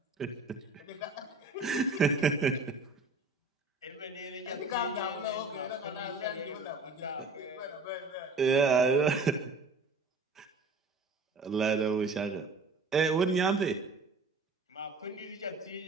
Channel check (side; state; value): left; quieter; 3.5 dB